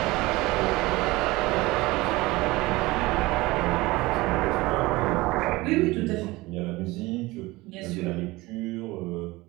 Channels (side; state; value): left; quieter; 20.8 dB